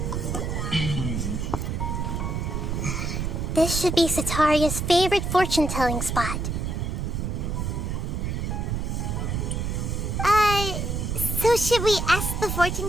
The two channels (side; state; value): right; noise; rumble, 1 dB below the sound